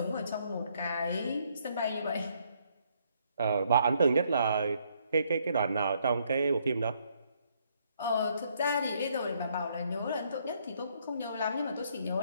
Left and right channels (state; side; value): inverted; both; correlation -0.70